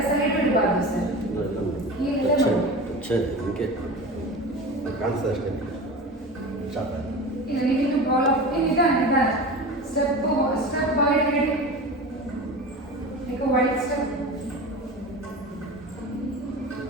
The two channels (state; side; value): normal; both; correlation 0.31